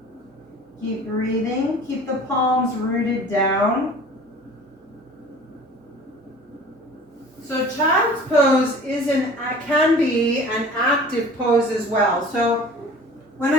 Keep breathing. Keep the palms rooted down. So child's pose can be an active pose as well. So when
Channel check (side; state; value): both; normal; correlation 0.44